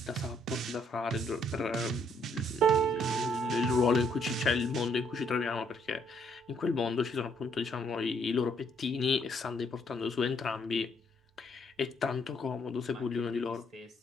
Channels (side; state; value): both; normal; correlation 0.69